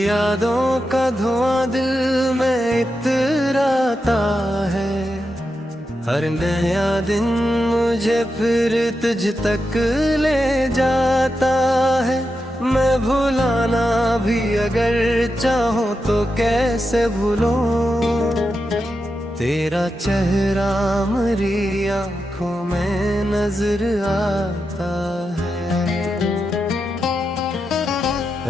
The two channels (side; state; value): both; normal; correlation 0.88